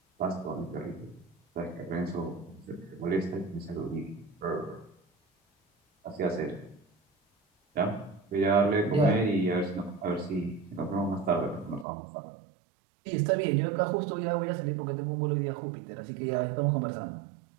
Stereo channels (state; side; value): drops out; left; at 11.9 s